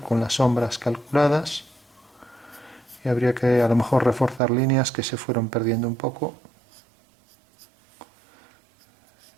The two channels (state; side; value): drops out; left; at 4.4 s